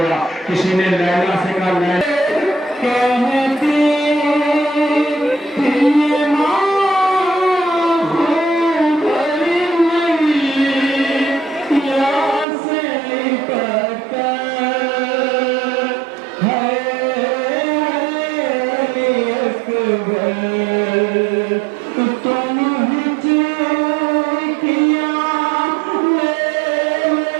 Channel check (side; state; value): left; drops out; at 12.5 s